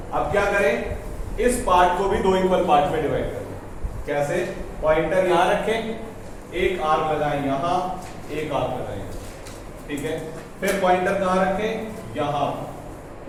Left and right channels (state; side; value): identical; both; correlation 1.00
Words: अब क्या करें? इस पार्ट को भी दो इक्वल पार्ट में डिवाइड करें. कैसे? पॉइंटर यहाँ रखें, एक आर्क लगाएं यहाँ, एक आर्क लगाएं. ठीक है? फिर पॉइंटर कहाँ रखें? यहाँ.